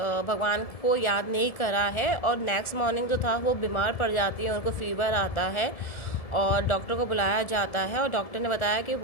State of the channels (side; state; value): right; late; 1.7 ms